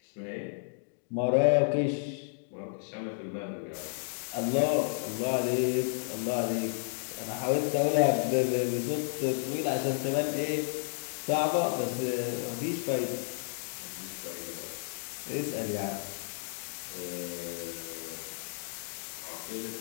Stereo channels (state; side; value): silent; right; digital silence